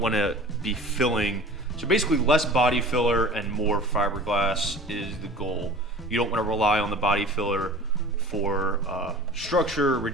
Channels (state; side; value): normal; both; correlation 0.40